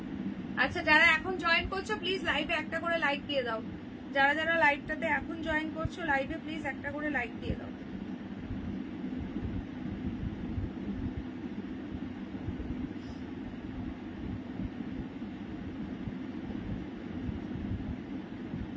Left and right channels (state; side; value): identical; both; correlation 1.00